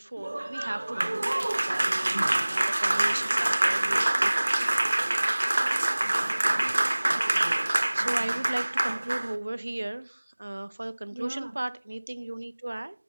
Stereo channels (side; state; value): both; inverted; correlation -1.00